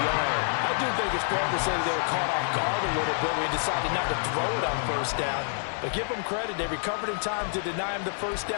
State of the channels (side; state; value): right; silent; digital silence